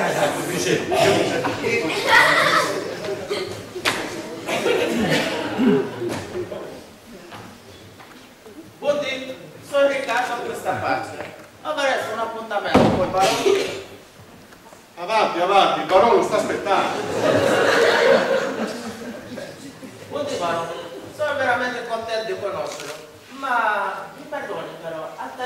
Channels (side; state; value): both; identical; correlation 1.00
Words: Buondì, sono Riccardo a questa parte. Avrei un appuntamento col barone. Avanti, avanti, il barone lo sta aspettando. Buondì barone, sono veramente contento di conoscerlo. Ma mi perdoni però, al